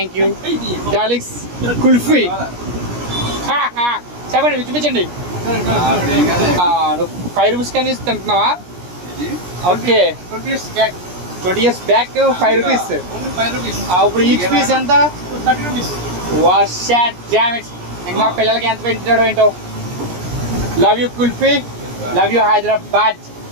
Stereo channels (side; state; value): left; late; 17 ms